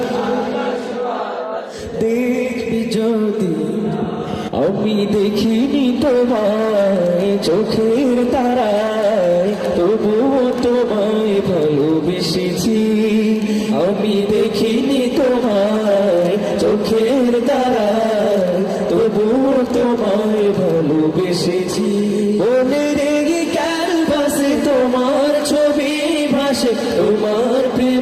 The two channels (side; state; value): both; identical; correlation 1.00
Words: দেখবি যদি আমি দেখিনি তোমায় চোখের তারায় তবুও তোমায় ভালোবেসেছি আমি দেখিনি তোমায় চোখের তারায় তবুও তোমায় ভালোবেসেছি মনের এই ক্যানভাসে তোমার ছবি ভাসে তোমার